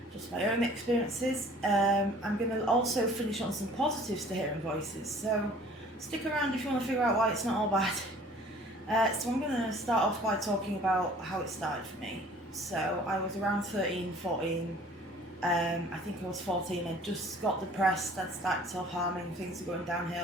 just my own experiences. I'm going to also finish on some positives to hearing voices, so stick around if you want to figure out why it's not all bad. So I'm going to start off by talking about how it started for me. So I was around 13, 14. I think I was 14. I just got depressed. I'd started self-harming. Things were going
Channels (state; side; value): normal; both; correlation 0.51